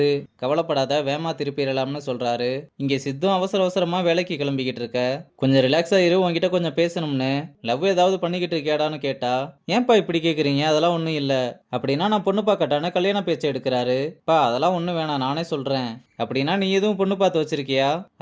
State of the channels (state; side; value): identical; both; correlation 1.00